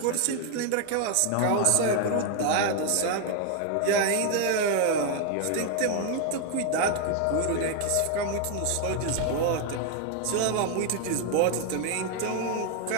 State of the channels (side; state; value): both; different; correlation 0.01